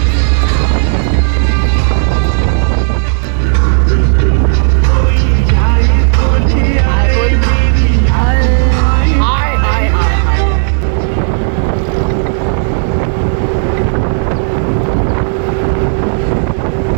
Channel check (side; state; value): left; silent; digital silence